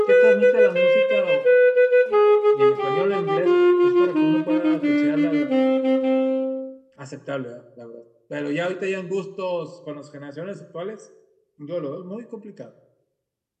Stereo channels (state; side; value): identical; both; correlation 1.00